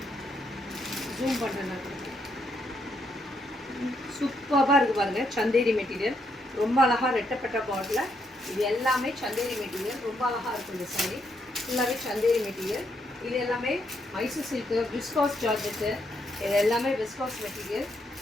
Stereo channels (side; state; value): both; normal; correlation 0.76